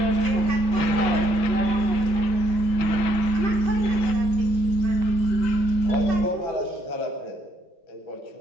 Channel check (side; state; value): right; late; 6.0 ms